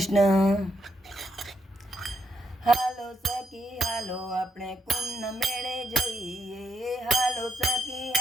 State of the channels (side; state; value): both; normal; correlation 0.79